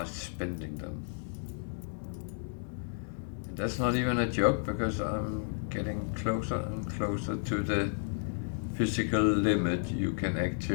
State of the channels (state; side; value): silent; right; digital silence